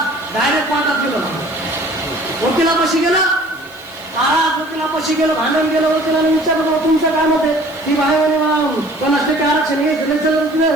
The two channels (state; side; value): noise; right; hiss, 26 dB below the sound